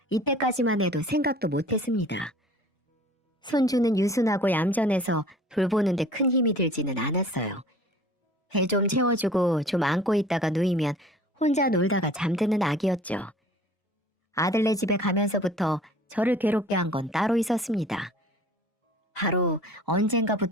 이때까지만 해도 생각도 못했습니다. 손주는 유순하고 얌전해서 돌보는데 큰 힘이 들지는 않았어요. 배 좀 채워주고 좀 안고 있다가 누이면 혼자 놀다가 잠드는 아기였죠. 아들네 집에 가면서부터 저를 괴롭게 한 건 따로 있었습니다. 바로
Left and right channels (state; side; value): normal; both; correlation 0.48